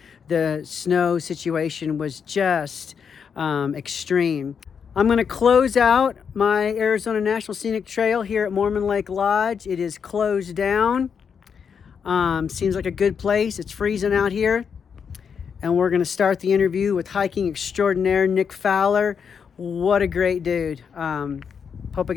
The snow situation was just extreme. I'm going to close out my Arizona National Scenic Trail here at Mormon Lake Lodge. It is closed down. Seems like a good place. It's freezing out here. And we're going to start the interview with hiking extraordinaire Nick Fowler. What a great dude. Hope I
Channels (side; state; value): right; quieter; 6.7 dB